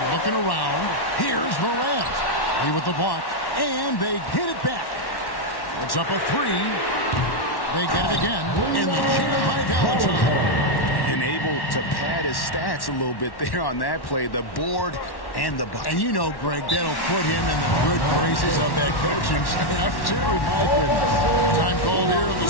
looking around. Here's Morant. Lee with the block. And they get it back. It's up a 3. They get it again. And the jam by Valentine. And able to pad his stats a little bit there on that play. The board and the bucket. And you know, Greg, that'll put him in the good graces of that coaching staff, too. My goodness. Time called here. The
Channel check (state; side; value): late; right; 1.1 ms